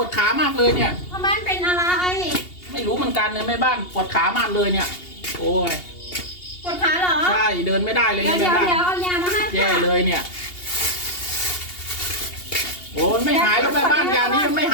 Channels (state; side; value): late; right; 2.8 ms